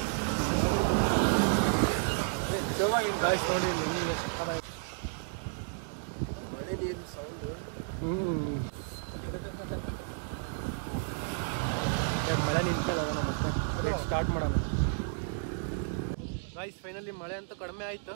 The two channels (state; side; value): silent; left; digital silence